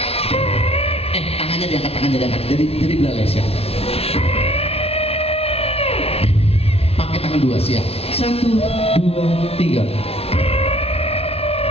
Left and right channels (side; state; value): right; late; 0.29 ms